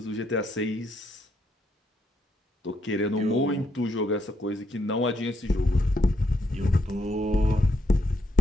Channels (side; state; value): both; normal; correlation 0.77